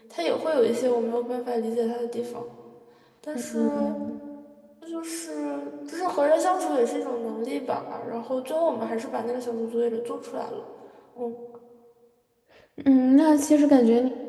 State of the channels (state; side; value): identical; both; correlation 1.00